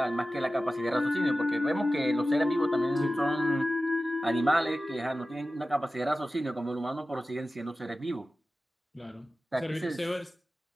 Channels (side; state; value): both; normal; correlation 0.95